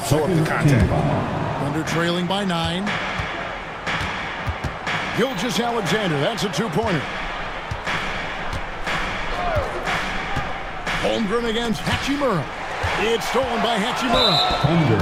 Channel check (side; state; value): both; identical; correlation 1.00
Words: the contact. Thunder trailing by 9. Gilgeous-Alexander, that's a 2-pointer. Holmgren against Hachimura. It's stolen by Hachimura.